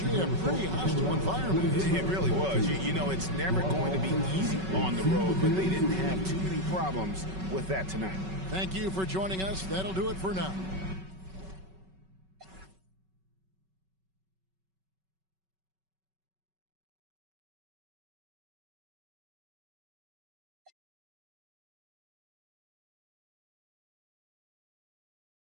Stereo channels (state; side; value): late; left; 5.3 ms